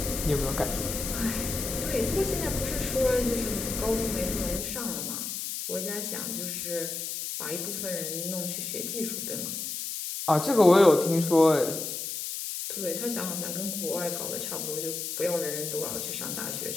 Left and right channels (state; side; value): noise; left; hiss, 4 dB below the sound